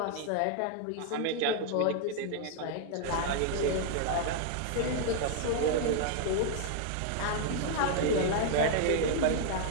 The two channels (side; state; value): both; different; correlation 0.00